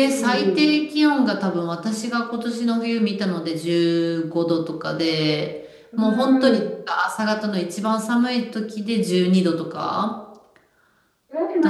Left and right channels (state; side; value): identical; both; correlation 1.00